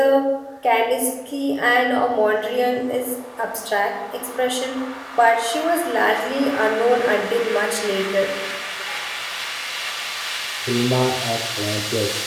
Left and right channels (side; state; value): both; identical; correlation 1.00